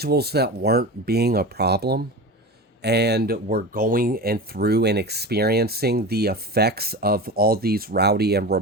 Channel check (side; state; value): both; normal; correlation 0.28